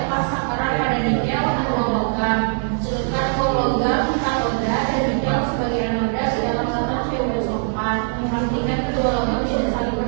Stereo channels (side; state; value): left; silent; digital silence